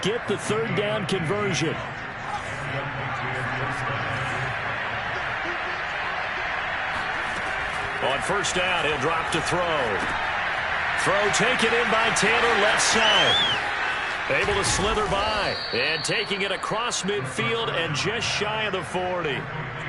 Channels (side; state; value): both; identical; correlation 1.00